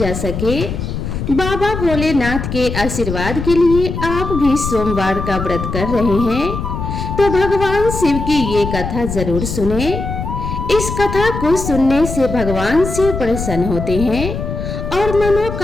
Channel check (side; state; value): left; noise; rumble, 5 dB below the sound